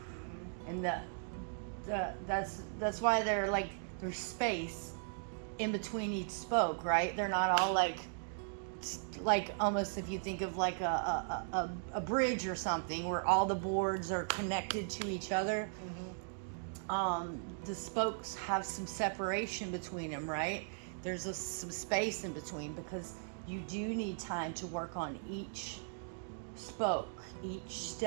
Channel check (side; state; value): left; silent; digital silence